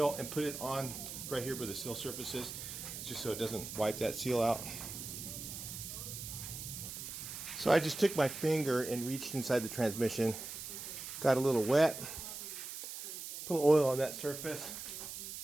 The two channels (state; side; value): noise; right; hiss, 8 dB below the sound